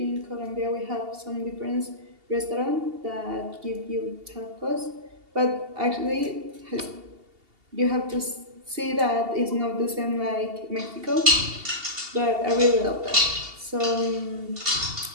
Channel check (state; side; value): late; left; 2.8 ms